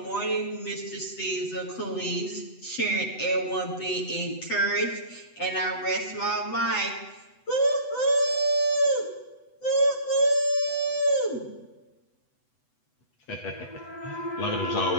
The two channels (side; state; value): right; late; 8.0 ms